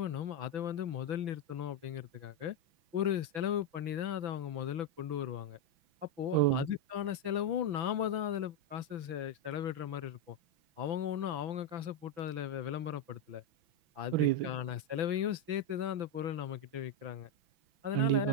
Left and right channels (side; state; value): left; late; 6.0 ms